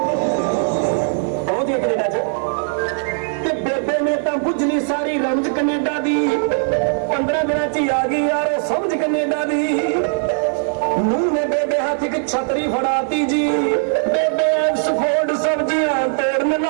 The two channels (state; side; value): silent; left; 56 dB below the other